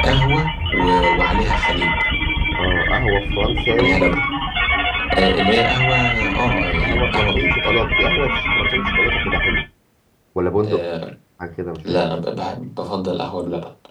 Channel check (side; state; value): both; identical; correlation 1.00